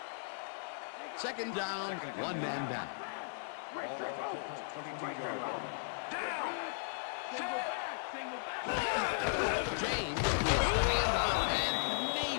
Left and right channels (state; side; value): silent; right; 54 dB below the other